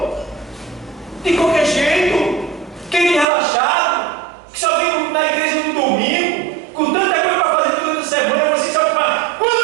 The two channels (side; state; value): left; drops out; at 3.2 s